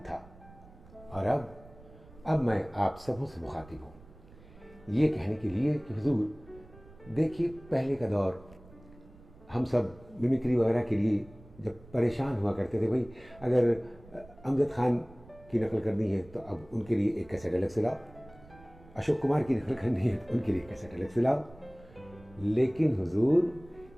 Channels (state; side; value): noise; right; rumble, 22 dB below the sound